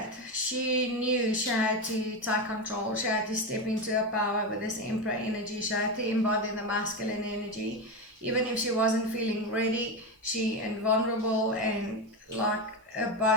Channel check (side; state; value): both; normal; correlation 0.15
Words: she knew she had to take control. She had to step into her power with this Emperor energy. She had to embody the masculine energy. Even if she wasn't feeling ready, she and vulnerable and like a